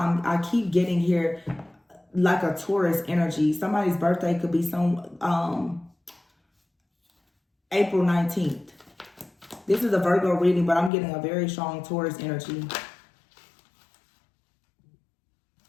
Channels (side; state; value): right; drops out; at 10.9 s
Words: I keep getting here like a Taurus energy. Somebody's birthday could be April 19th. This is a Virgo reading, but I'm getting a very strong Taurus energy.